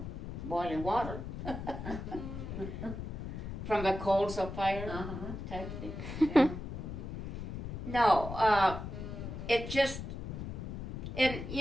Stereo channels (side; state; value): left; noise; rumble, 7 dB below the sound